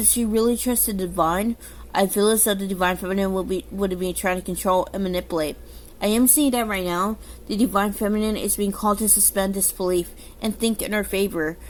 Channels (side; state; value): both; identical; correlation 1.00